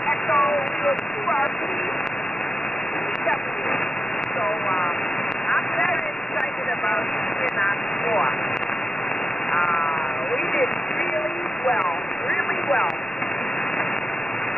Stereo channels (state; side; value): noise; left; rumble, 29 dB below the sound